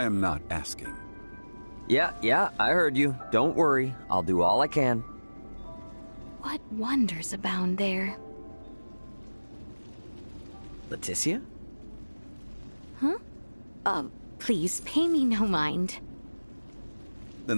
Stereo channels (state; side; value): inverted; both; correlation -1.00